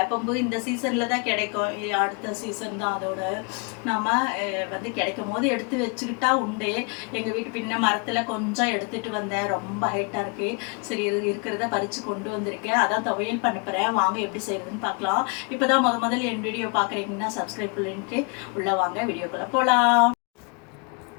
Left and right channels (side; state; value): right; quieter; 34.5 dB